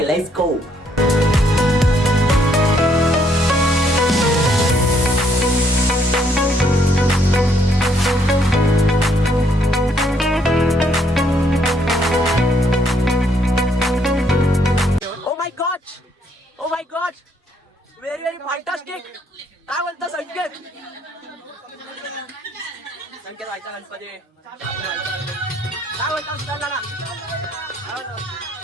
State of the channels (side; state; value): both; normal; correlation 0.69